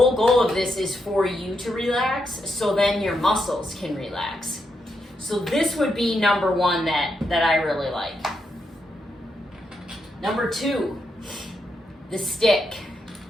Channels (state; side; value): normal; both; correlation 0.82